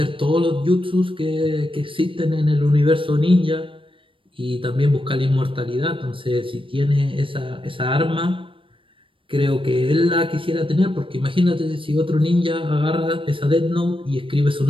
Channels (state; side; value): late; left; 0.25 ms